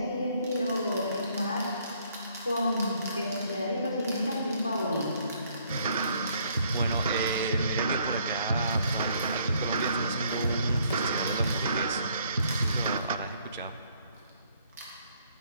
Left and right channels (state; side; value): inverted; both; correlation -0.66